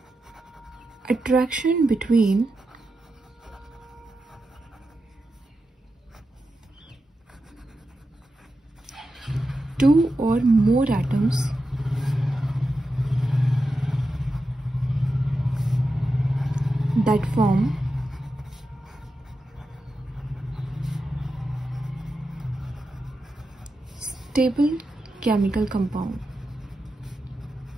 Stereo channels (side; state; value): both; normal; correlation 0.89